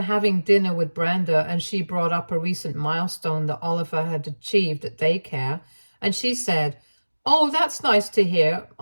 having dinner with Brenda, and she brought up a recent milestone that Oliver had achieved at daycare, and she said, "Oh, that's nice to hear.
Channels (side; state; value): both; inverted; correlation -1.00